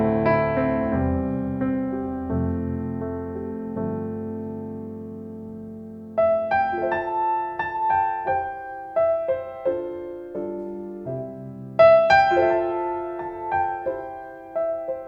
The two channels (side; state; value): both; identical; correlation 1.00